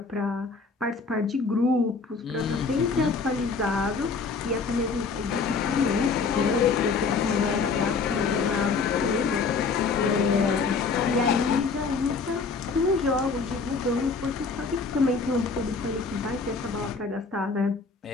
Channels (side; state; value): right; quieter; 4.7 dB